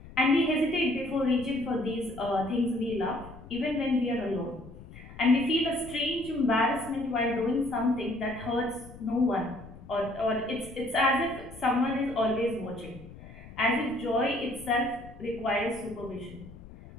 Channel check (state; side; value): noise; left; rumble, 17 dB below the sound